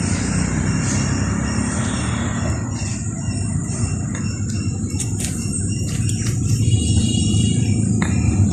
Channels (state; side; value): identical; both; correlation 1.00